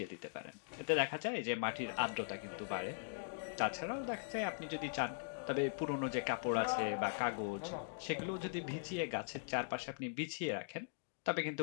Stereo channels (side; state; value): right; silent; digital silence